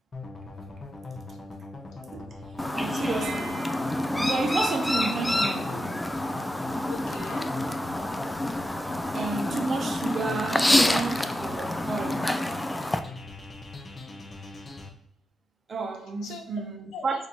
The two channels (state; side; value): normal; both; correlation 0.90